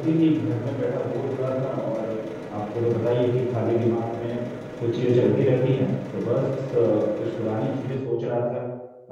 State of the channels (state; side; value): identical; both; correlation 1.00